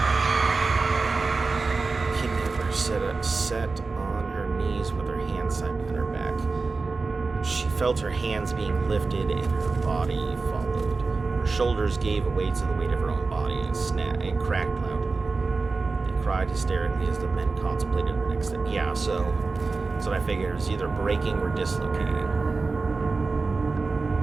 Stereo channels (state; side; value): quieter; left; 4.0 dB